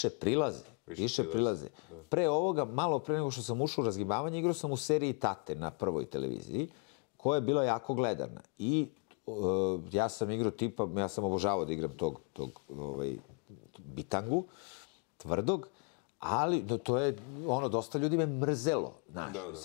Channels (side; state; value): right; quieter; 36.5 dB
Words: prilaze. Pre ovoga, malo pre nego što sam ušao u razgibavanje, igrao sam u seriji Tate na Prvoj televiziji, koja je bila jako gledana. I ja sam igrao tipa, ja sam obožavao da igram tog bitangu, tvrdog, ali to je, dosta ljudi me mrzelo.